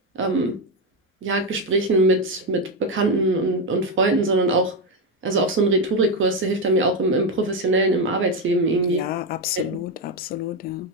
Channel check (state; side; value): normal; both; correlation 0.08